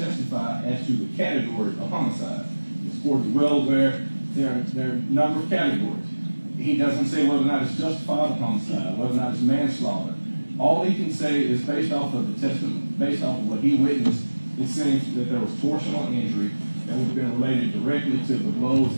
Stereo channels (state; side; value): inverted; both; correlation -1.00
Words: as to the category of homicide. This court is well aware there are a number of categories. He doesn't say whether or not it's justified homicide, whether or not it's manslaughter. All he can say is based off of the testimony, based off of what he witnessed, it seems that there was torsional injury that would have been related directly to the blows